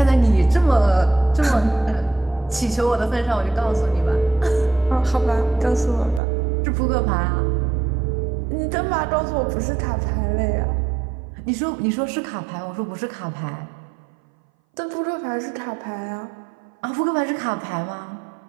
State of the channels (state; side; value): drops out; left; at 6.2 s